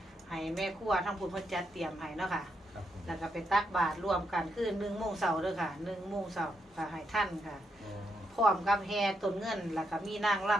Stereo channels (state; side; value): normal; both; correlation 0.81